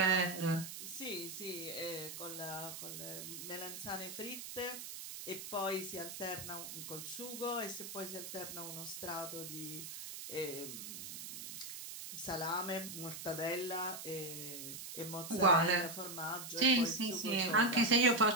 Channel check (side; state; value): right; noise; hiss, 9 dB below the sound